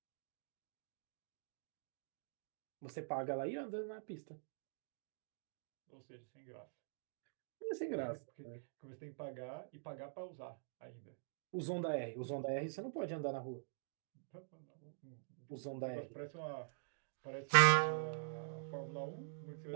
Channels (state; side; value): silent; left; digital silence